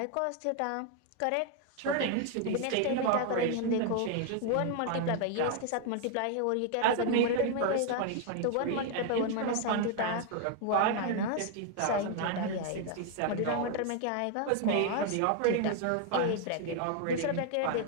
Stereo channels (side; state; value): both; different; correlation 0.00